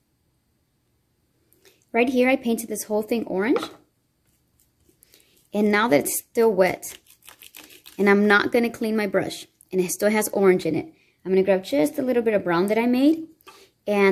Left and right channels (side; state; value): both; identical; correlation 1.00